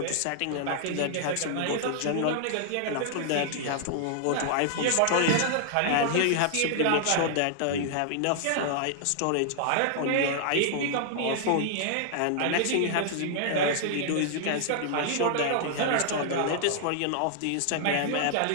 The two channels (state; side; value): different; both; correlation -0.01